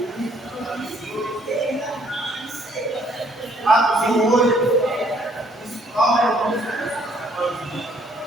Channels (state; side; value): normal; both; correlation 0.64